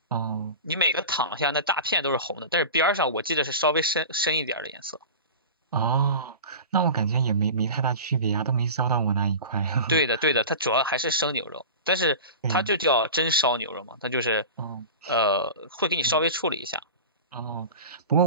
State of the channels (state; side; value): inverted; both; correlation -0.33